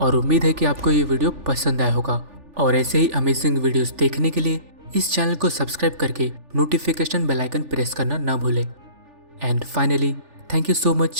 और उम्मीद है कि आपको ये वीडियो पसंद आया होगा। और ऐसे ही अमेजिंग वीडियोस देखने के लिए इस चैनल को सब्सक्राइब करके नोटिफिकेशन बेल आइकन प्रेस करना ना भूलें। And finally, thank you so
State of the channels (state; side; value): late; left; 3.4 ms